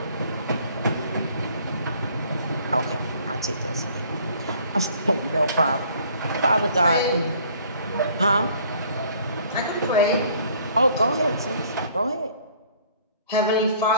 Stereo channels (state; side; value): inverted; both; correlation -0.57